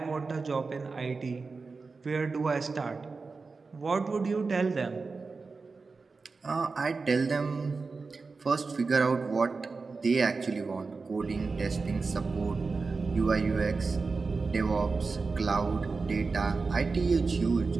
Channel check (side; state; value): left; quieter; 4.3 dB